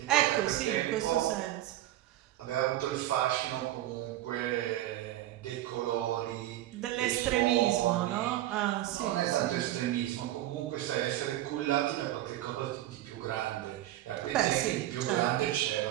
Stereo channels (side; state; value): left; quieter; 14.4 dB